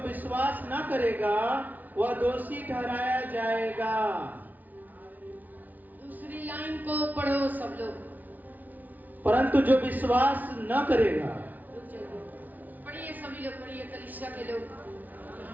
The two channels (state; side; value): late; left; 0.079 ms